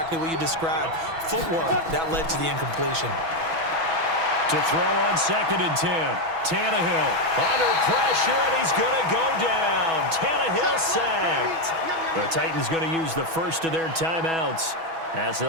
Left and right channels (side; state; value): left; late; 6.1 ms